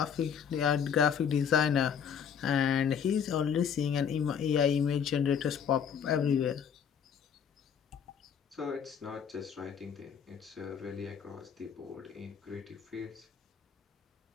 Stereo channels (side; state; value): right; quieter; 7.6 dB